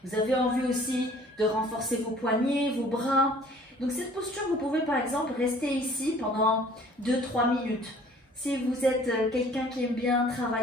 Vous avez envie aussi de renforcer vos poignets, vos bras. Donc cette posture, vous pouvez par exemple rester ici pendant 2-3 minutes. Si vous êtes quelqu'un qui aime bien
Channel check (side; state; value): both; normal; correlation 0.53